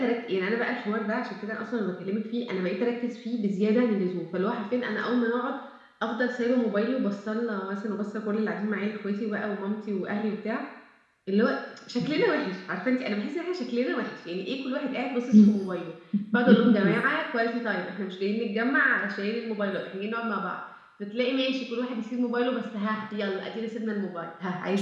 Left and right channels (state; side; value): identical; both; correlation 1.00